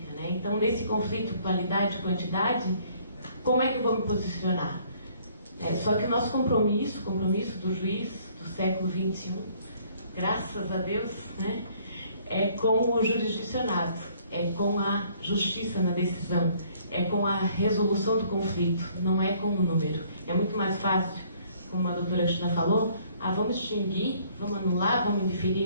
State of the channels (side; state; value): both; inverted; correlation -0.61